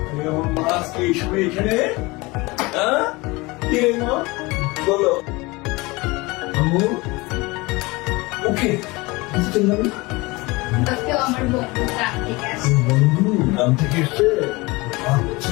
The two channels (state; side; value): quieter; right; 23.5 dB